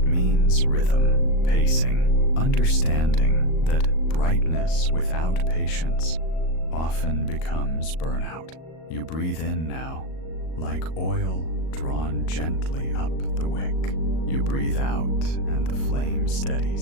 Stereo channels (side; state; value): right; late; 38 ms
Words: means rhythm, pacing, understanding that brightness without patience often becomes burnout. You breathe in now, like oil drawn gently up the wick. You breathe out, and the flame